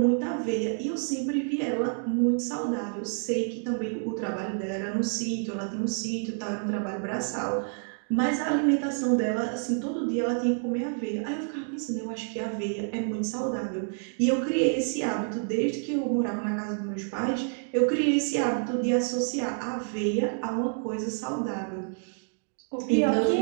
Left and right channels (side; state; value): left; silent; 59 dB below the other